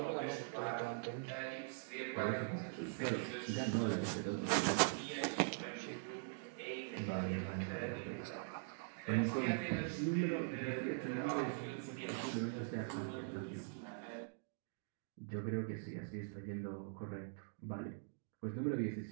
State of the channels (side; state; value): left; silent; digital silence